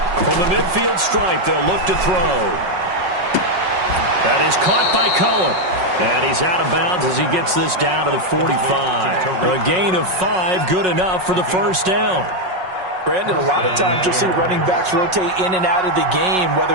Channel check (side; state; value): left; late; 5.4 ms